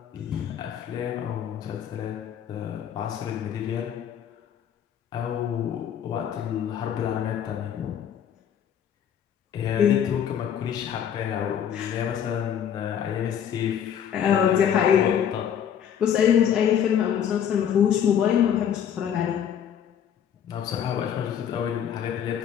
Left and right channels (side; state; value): right; quieter; 9.0 dB